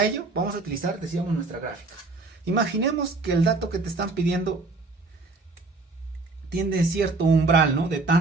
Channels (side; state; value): left; quieter; 3.5 dB